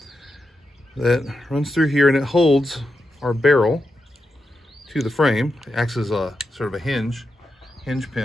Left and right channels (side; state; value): both; normal; correlation 0.87